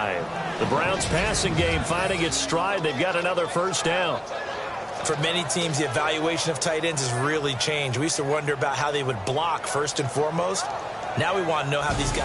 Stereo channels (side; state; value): both; identical; correlation 1.00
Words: The Browns passing game finding its stride. They've got another first down. For many teams, the evaluation of tight ends has really changed. We used to wonder about how they would block first and foremost. Now we want to know how these